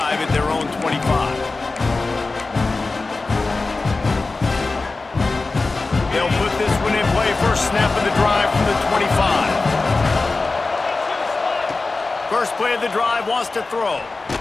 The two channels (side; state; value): right; quieter; 3.6 dB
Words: at their own 25. They'll put this one in play. First snap of the drive from the 25. First play of the drive, wants to throw.